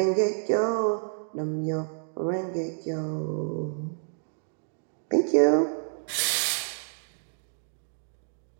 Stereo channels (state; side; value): silent; left; digital silence